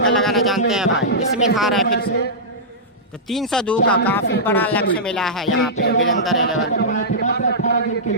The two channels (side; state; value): both; normal; correlation -0.14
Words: लगाना जानते हैं भाई। इसमें था रहा है फिर से, तो 302 का काफी बड़ा लक्ष्य मिला है यहाँ पे वीरेंद्र 11।